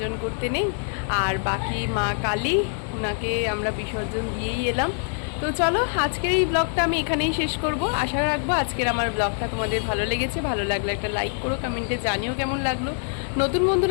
করতে নেই। আর বাকি মা কালী, ওনাকে আমরা বিসর্জন দিয়েই এলাম। তো চলো, আজকের এই ব্লগটা আমি এখানেই শেষ করব। আশা রাখবো আজকের আমার ব্লগটা তোমাদের ভালো লেগেছে। ভালো লাগলে একটা লাইক করো, কমেন্টে জানিও কেমন লাগলো। নতুন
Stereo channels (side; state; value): right; silent; 62 dB below the other